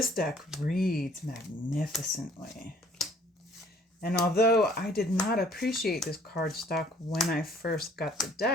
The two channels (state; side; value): normal; both; correlation 0.57